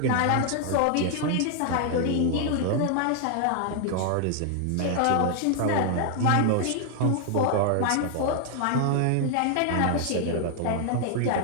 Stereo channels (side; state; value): both; different; correlation 0.00